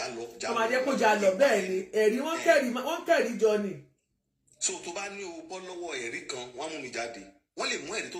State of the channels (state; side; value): identical; both; correlation 1.00